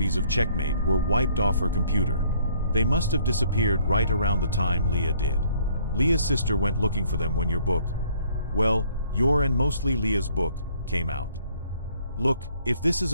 of Checkmate were wiped off her computer. They must have disappeared right around the time Leah did. Leah's sister went looking for them when your book, well, your and mostly Leah's book, came out. Look, if this is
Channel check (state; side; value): inverted; both; correlation -0.63